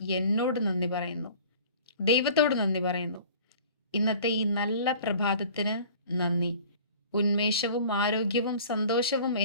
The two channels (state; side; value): inverted; both; correlation -0.47